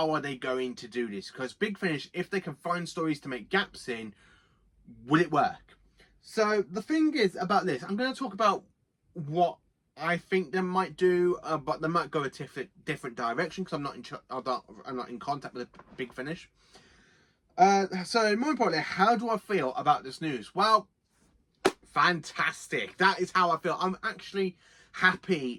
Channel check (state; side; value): identical; both; correlation 1.00